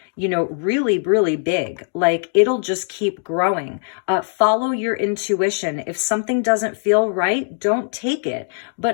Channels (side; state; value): right; silent; 65 dB below the other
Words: you know, really, really big. Like, it'll just keep growing. Follow your intuition. If something doesn't feel right, don't take it.